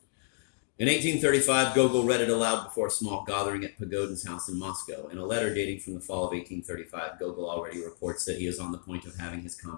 In 1835, Gogol read it aloud before a small gathering at Pagodin's house in Moscow. In a letter dating from the fall of 1835, Gogol already reports that he is on the point of having his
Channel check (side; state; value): right; silent; digital silence